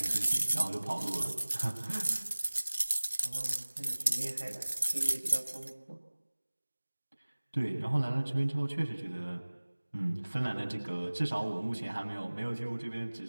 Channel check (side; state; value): both; inverted; correlation -1.00